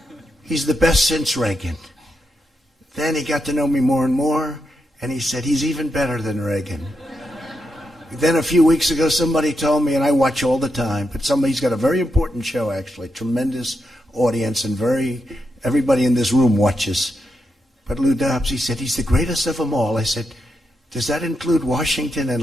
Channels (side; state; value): both; normal; correlation 0.84